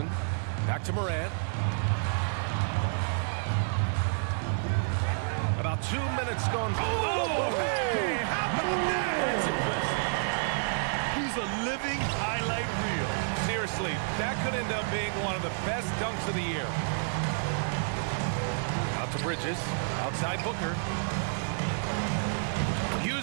Back to Morant. About 2 minutes gone. Oh, hey, how about that? That's impressive. He's a living highlight reel. Seriously, that could end up being one of the best dunks of the year. Out to Bridges. Outside Booker.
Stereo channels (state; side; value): silent; left; digital silence